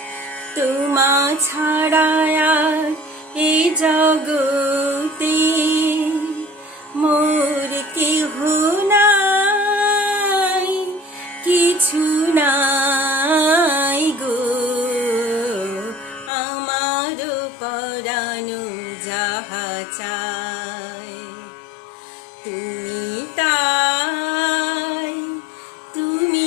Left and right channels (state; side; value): drops out; right; at 16.3 s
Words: তোমা ছাড়া আর এই জগতে মোর কেহ নাই কিছু নাই গো আমার পরানো যাহা চাই তুমি তাই